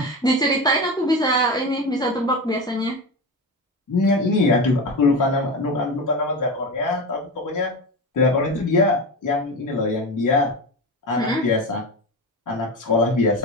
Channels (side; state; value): both; normal; correlation 0.22